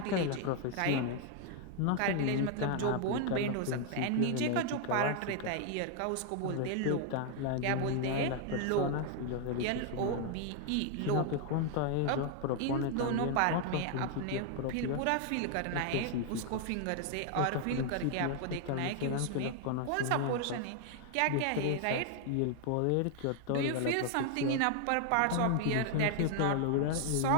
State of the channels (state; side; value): different; both; correlation 0.00